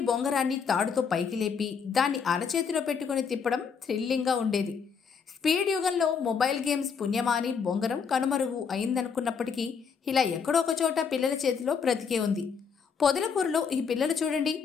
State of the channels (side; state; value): right; quieter; 6.2 dB